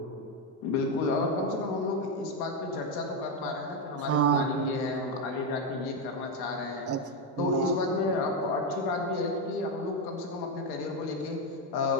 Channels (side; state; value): both; normal; correlation 0.07